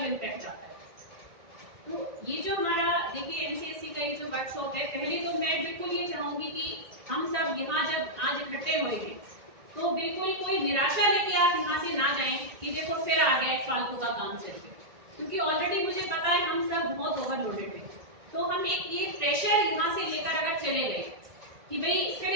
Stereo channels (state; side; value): late; left; 1.9 ms